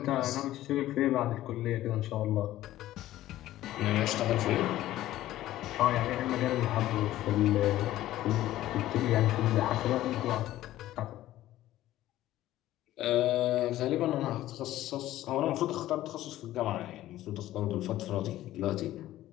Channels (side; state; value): right; quieter; 14.5 dB